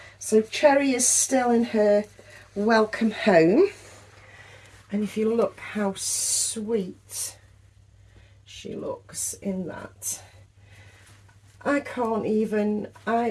So Cherry is still in her welcome home. And if you look how sweet she looks in that. I can't even,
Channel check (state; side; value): identical; both; correlation 1.00